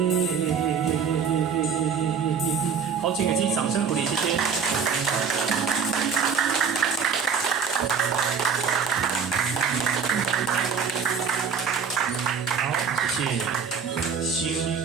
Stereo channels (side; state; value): left; quieter; 6.4 dB